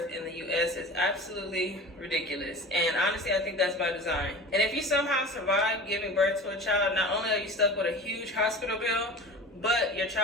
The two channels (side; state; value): both; normal; correlation 0.36